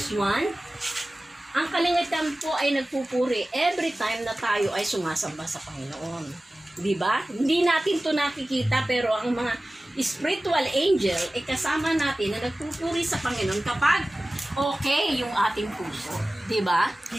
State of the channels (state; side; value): normal; both; correlation 0.97